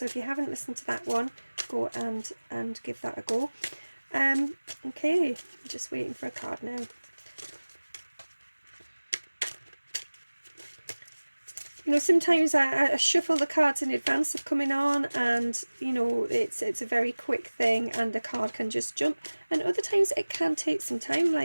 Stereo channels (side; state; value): both; inverted; correlation -1.00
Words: if you haven't listened to that one, go and give that a go. Okay, I'm just waiting for a card now. You know, sometimes I shuffle the cards in advance of coming on, and you know, it's a very quick thing and the card can just jump, and other times it can take some time,